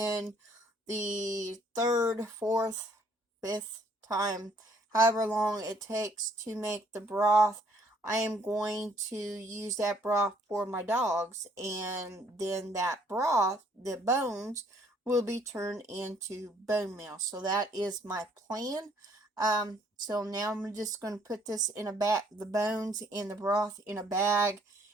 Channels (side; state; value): both; normal; correlation 0.64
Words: the 3rd, 4th, 5th time, however long it takes to make the broth, I am going to use that broth for my dogs, and then that broth, the bones, will be turned into bone meal. So that is my plan. So now I'm just going to put this in a bag, the bones and the broth in a bag,